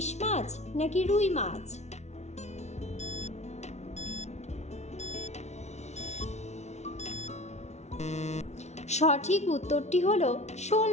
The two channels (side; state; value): right; late; 0.32 ms